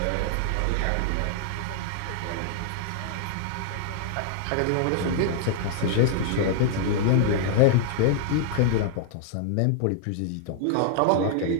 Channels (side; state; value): both; different; correlation -0.01